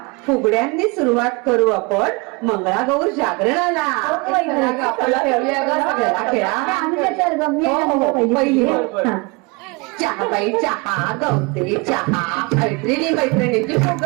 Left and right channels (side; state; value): left; quieter; 28.1 dB